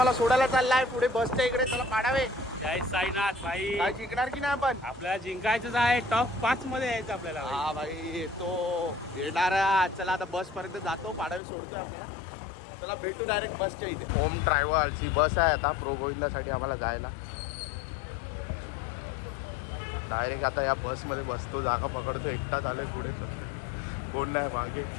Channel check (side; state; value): right; drops out; at 11.4 s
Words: आम्हाला सोडायला चाललाय पुढे बसच्या इकडे. चला पाडावे. जय साईनाथ भाई. काय जिंकणार की नाही आपण? आपल्याला जिंकायचंच आहे. टॉप 5 मध्ये यायचं आपल्याला. हा भाई तो येणार. चला आता बस पर्यंत जातो. पाडावे सोडतोय आपल्याला. चला भेटू डायरेक्ट बसच्या इथे. होम ट्रॅव्हल्स ही बस आहे आता प्रो गोविंदासाठी आम्हाला जायला. डायरेक्ट आता या बसमध्ये बसतो. जागा पकडतो. एकटाच आलोय पुढे. कोण नाही मागे.